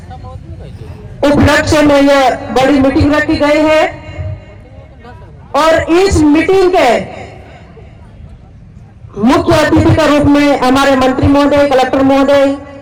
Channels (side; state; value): both; identical; correlation 1.00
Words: उपलक्ष्य में यह बड़ी मीटिंग रखी गई है। और इस मीटिंग के मुख्य अतिथि के रूप में हमारे मंत्री महोदय, कलेक्टर महोदय,